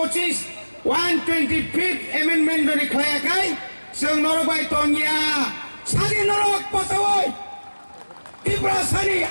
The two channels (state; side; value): inverted; both; correlation -1.00